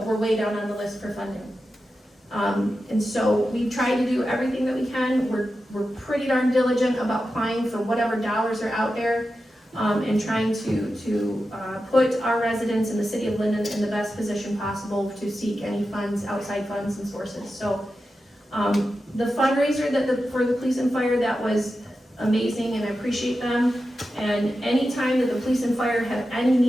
we're way down on the list for funding. And so we try to do everything that we can. We're pretty darn diligent about applying for whatever dollars are out there, and trying to put our residents in the city of Linden in the best position possible to seek any funds, outside funds and sources. So the fundraiser for the police and fire, that was amazing, and I appreciate them. And anytime that the police and fire have any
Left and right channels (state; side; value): normal; both; correlation 0.91